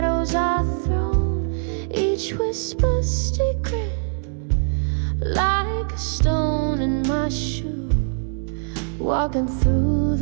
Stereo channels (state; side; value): silent; left; 64 dB below the other